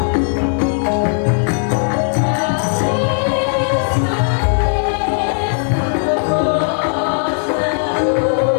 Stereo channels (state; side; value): silent; right; 59 dB below the other